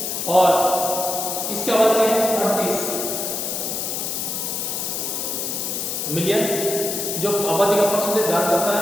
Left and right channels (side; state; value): left; noise; hiss, 2 dB below the sound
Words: और इसकी आबादी है 38 मिलियन, जो आबादी का परसेंटेज धारण करता है